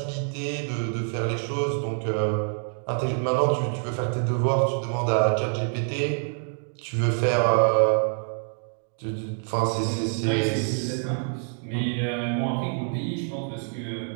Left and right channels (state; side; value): silent; left; 61 dB below the other